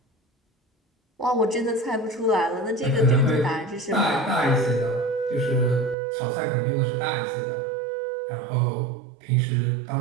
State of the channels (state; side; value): drops out; left; at 6.0 s